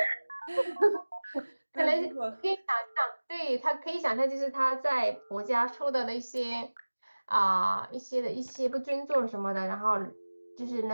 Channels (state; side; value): inverted; both; correlation -1.00